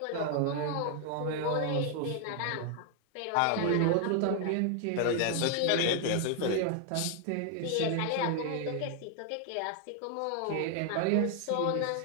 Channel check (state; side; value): different; both; correlation 0.00